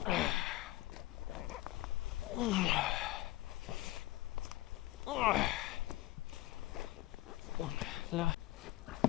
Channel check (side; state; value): right; quieter; 17.1 dB